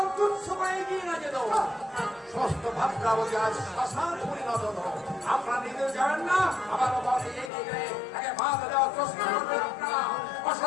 তুচ্ছ করে এগিয়ে না যেত সমস্ত ভাবনাবতী আজ শ্মশান পরিণত হতো আপনারা নিজেও যাবেন না আবার অবাধে এগিয়ে গেলে তাকে বাধা দেওয়ার চেষ্টা করবেন আপনারা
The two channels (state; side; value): drops out; right; at 7.5 s